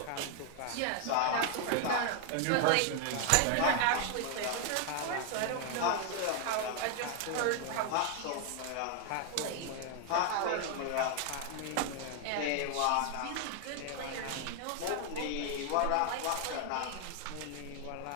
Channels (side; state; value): both; different; correlation 0.00